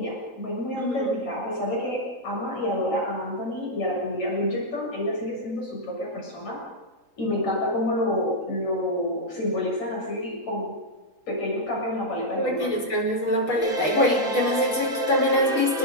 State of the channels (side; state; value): right; late; 3.8 ms